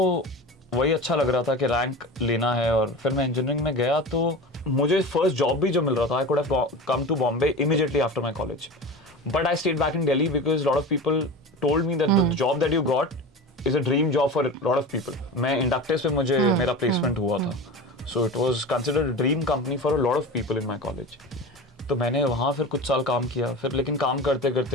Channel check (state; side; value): normal; both; correlation 0.30